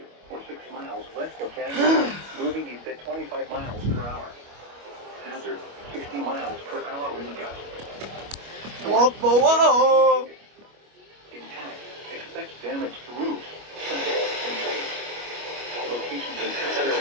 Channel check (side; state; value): left; late; 25 ms